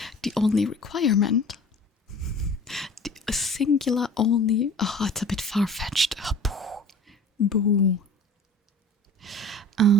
the only requirement. A singular only. Oh, it's a bit far-fetched. Oh, boo.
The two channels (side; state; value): both; normal; correlation 0.44